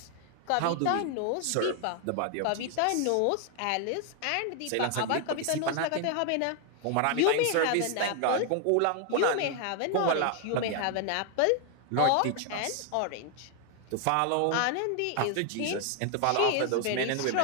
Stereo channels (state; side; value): different; both; correlation 0.00